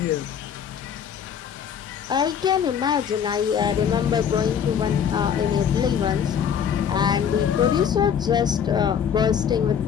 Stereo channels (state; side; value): quieter; right; 8.0 dB